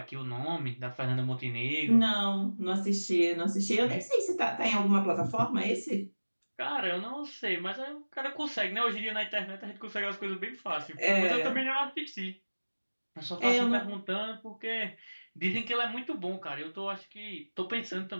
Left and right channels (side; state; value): both; inverted; correlation -1.00